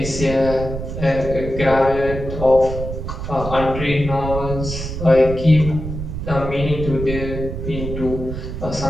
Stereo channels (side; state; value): right; noise; rumble, 7 dB below the sound